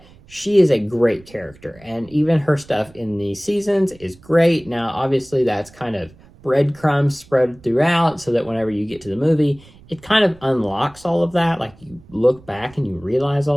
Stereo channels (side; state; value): right; noise; rumble, 25 dB below the sound